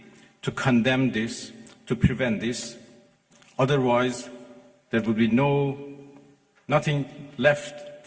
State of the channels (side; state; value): both; identical; correlation 1.00